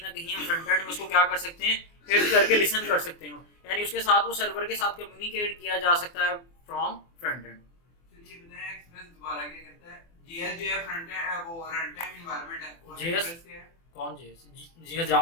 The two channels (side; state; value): right; late; 24 ms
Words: ना कहीं हम फ्रंट एंड में उसको क्या कर सकते हैं, हिट करके लिसन कर सकते हो, यानी उसके साथ वो सर्वर के साथ कम्युनिकेट किया जा सकता है फ्रॉम फ्रंट एंड। चलिए बताएं एक्सप्रेस दोबारा क्या करता है। जीएस जो है फ्रंट एंड वो रन टाइम एनवायरनमेंट है, और JS एक्सप्रेस क्या है, कौन JS? JS